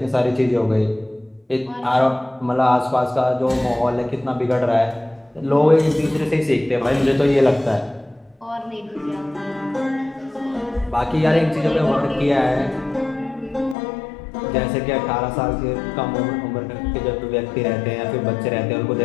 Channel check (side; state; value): right; drops out; at 13.8 s